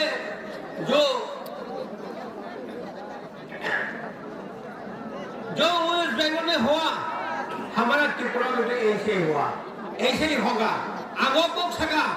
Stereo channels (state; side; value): identical; both; correlation 1.00